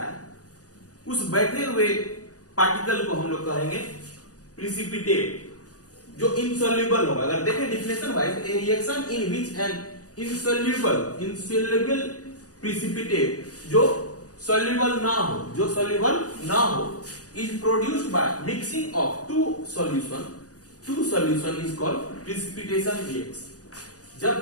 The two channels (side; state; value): right; late; 0.67 ms